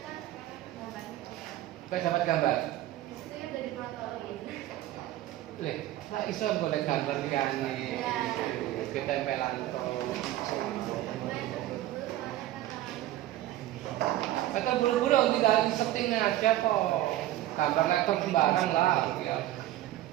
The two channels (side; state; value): left; quieter; 14.5 dB